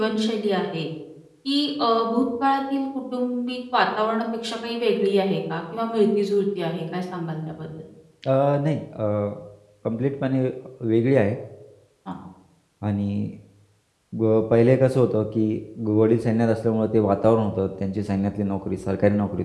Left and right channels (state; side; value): identical; both; correlation 1.00